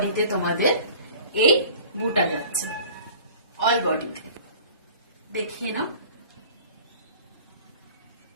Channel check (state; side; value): inverted; both; correlation -0.46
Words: তোমাদের এই বুটা যাচ্ছে, অল বডিতে দেখিয়ে নাও।